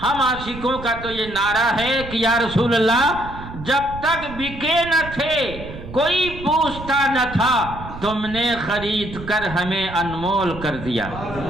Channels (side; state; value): right; noise; rumble, 12 dB below the sound